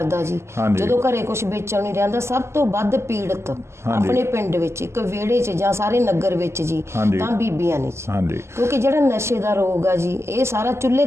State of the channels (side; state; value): left; late; 0.13 ms